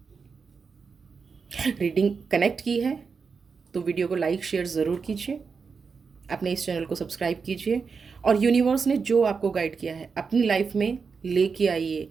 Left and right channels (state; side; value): quieter; left; 5.3 dB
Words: रीडिंग कनेक्ट की है तो वीडियो को लाइक शेयर ज़रूर कीजिए, अपने इस चैनल को सब्सक्राइब कीजिए, और यूनिवर्स ने जो आपको गाइड किया है अपनी लाइफ में लेके आइए।